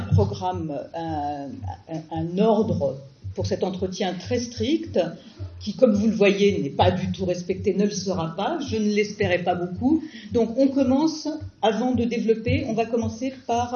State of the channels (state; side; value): identical; both; correlation 1.00